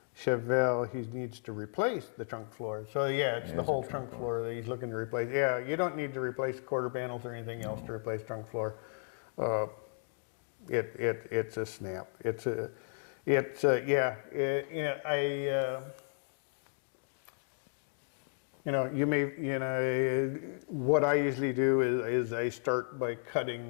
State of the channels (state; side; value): silent; right; digital silence